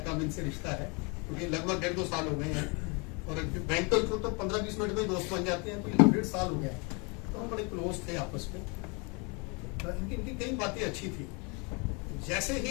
कम इनसे रिश्ता है, क्योंकि लगभग 1.5-2 साल हो गए हैं, और बैंक तो 15-20 मिनट में दोस्त बन जाते हैं, तो 1.5 साल हो गया है, तो हम बड़े क्लोज थे आपस में। इनकी कई बातें अच्छी थी, जैसे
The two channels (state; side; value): quieter; right; 31.3 dB